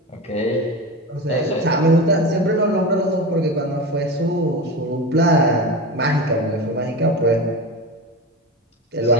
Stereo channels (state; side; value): normal; both; correlation 0.25